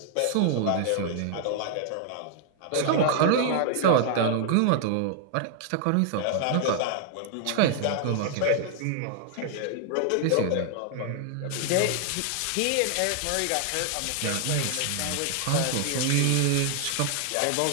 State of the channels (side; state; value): both; different; correlation 0.00